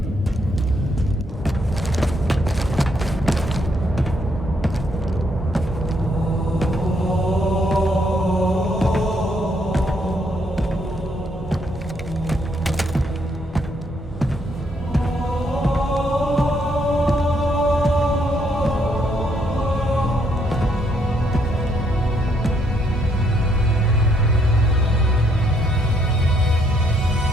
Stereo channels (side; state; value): both; normal; correlation 0.72